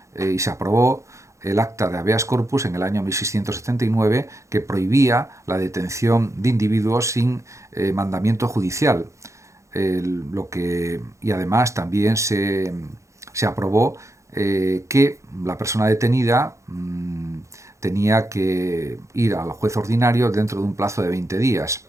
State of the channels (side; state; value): left; late; 0.15 ms